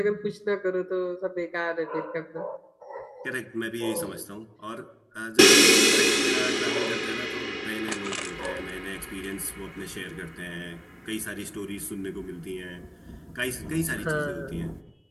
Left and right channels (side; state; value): both; identical; correlation 1.00